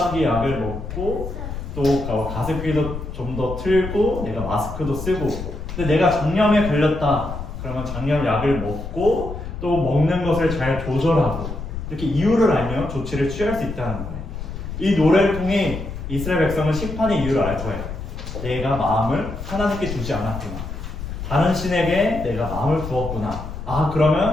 약을 먹고 또 가습기도 좀 더 틀고 내가 마스크도 쓰고, 근데 내가 장염에 걸렸다 그러면 장염 약을 먹고 또 먹는 것을 잘 조절하고 이렇게 이유를 알면 조치를 취할 수 있다는 거예요. 이 노래를 통해 이스라엘 백성은 심판의 이유를 알 거예요. 내가 마음을 하나님께 두지 않았구나. 다른 신에게 내가 마음을 두었구나. 아,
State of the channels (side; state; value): left; noise; rumble, 8 dB below the sound